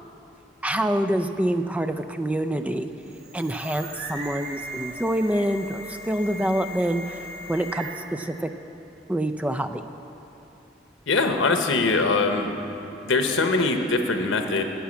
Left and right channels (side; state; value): both; normal; correlation 0.54